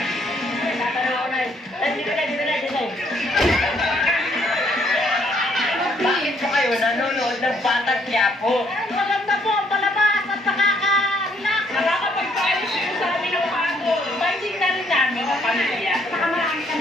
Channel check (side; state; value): both; normal; correlation 0.67